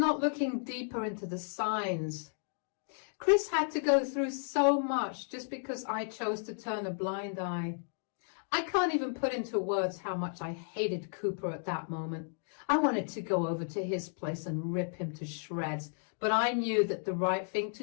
looking deeper into the signs. Chris had to go through so much just because I chose to turn a blind eye. I can't even put into words how much I hated Cooper at that moment. I wanted to go over to his place and rip him to shreds, but I knew that the right thing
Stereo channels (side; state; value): right; silent; digital silence